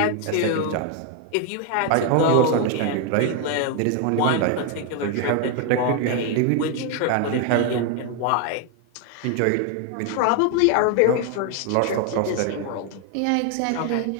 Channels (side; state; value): both; different; correlation 0.01